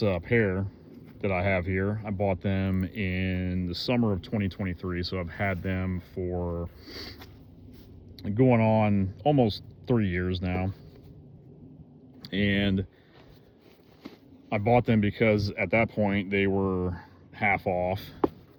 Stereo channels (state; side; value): identical; both; correlation 1.00